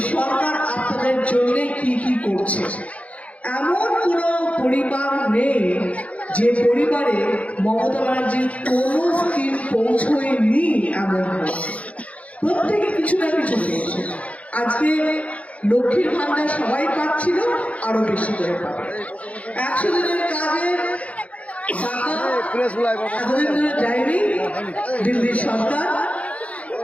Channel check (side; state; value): right; late; 0.066 ms